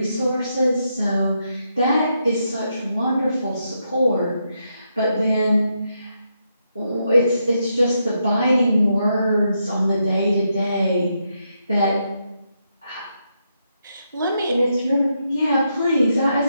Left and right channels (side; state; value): both; inverted; correlation -0.81